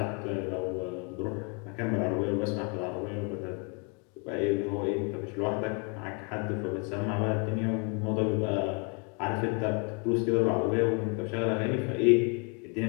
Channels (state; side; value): quieter; right; 35.1 dB